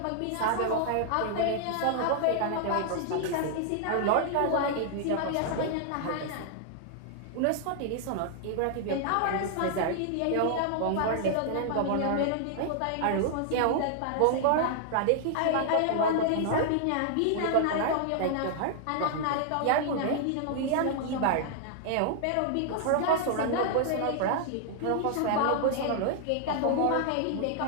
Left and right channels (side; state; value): both; different; correlation -0.01